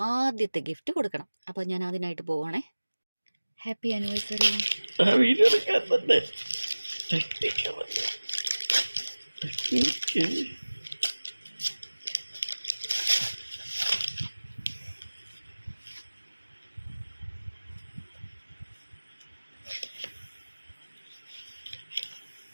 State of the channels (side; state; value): both; inverted; correlation -1.00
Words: ആദ്യത്തെ ഗിഫ്റ്റ് കൊടുക്കണം. അപ്പോൾ ഞാൻ അതിനായിട്ട് പോവാണേ. Happy anniversary.